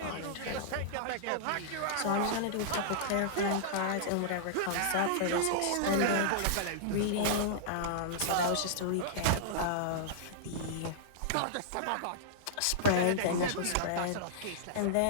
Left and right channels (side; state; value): both; different; correlation -0.02